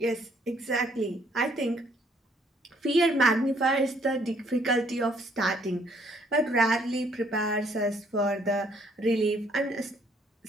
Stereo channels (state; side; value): normal; both; correlation 0.65